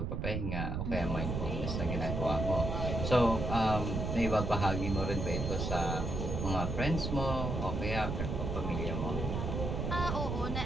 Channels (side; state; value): right; noise; rumble, 2 dB below the sound